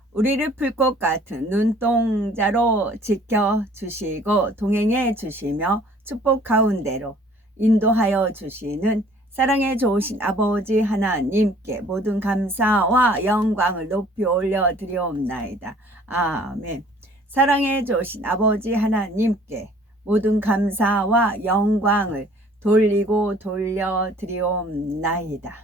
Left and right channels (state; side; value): normal; both; correlation 0.54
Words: 우리를 풀 것 같은 눈동자로 지켜주시고 동행해 주시며 축복 가운데로 인도하여 주시는 사랑에 좋으신 아버지 하나님께 모든 감사와 영광을 높이 올려드리옵나이다. 아멘. 사랑에 좋으신 아버지 하나님께 모든 감사와 영광을 돌리고